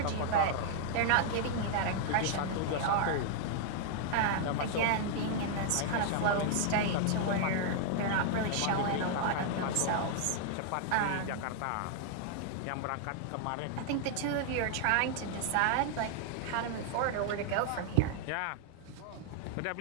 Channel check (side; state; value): both; different; correlation -0.01